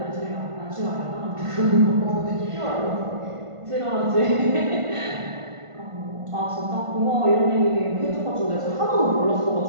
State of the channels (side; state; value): left; late; 1.5 ms